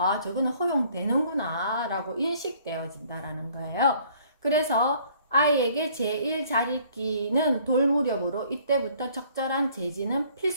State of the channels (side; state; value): both; inverted; correlation -0.59